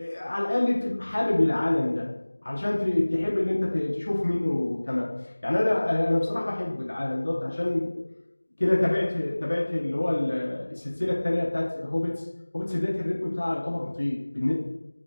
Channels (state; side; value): inverted; both; correlation -1.00